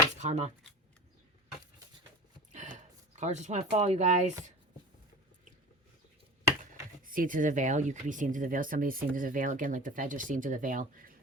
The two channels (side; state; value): both; normal; correlation 0.37